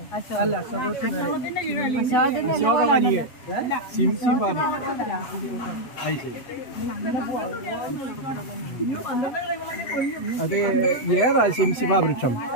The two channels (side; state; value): right; late; 7.7 ms